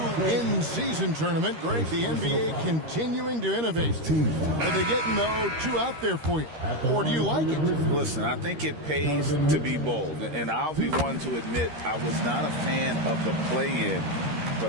in-season tournament, Greg, the NBA continuing to innovate. Are they getting, though, too out there for you? Or do you like it? Listen, I think it pays to be bold. And I'll be one to admit I was not a fan of the play-in.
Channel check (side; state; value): left; late; 13 ms